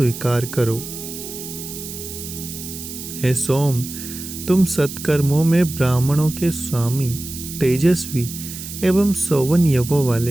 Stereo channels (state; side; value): noise; right; hiss, 10 dB below the sound